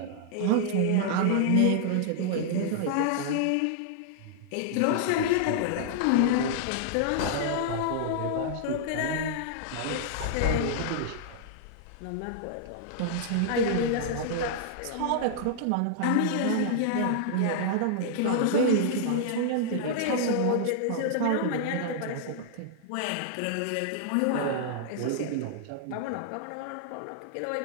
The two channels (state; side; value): different; both; correlation -0.01